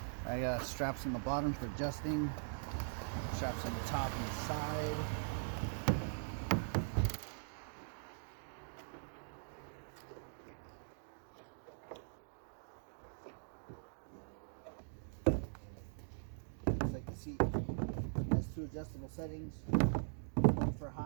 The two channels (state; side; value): silent; left; digital silence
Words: I got straps on the bottom for adjusting. Straps on the top and the side. Looks like the seat has two adjustable settings, one for